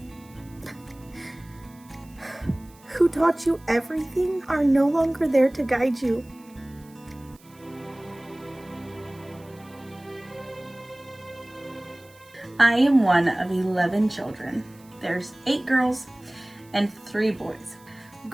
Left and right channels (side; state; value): right; noise; hiss, 27 dB below the sound